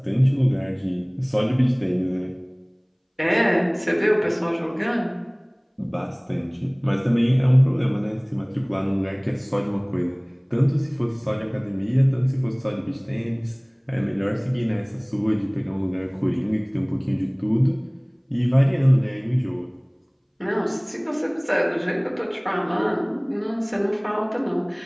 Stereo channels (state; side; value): identical; both; correlation 1.00